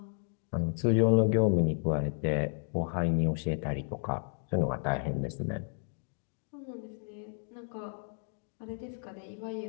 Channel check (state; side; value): silent; right; 56 dB below the other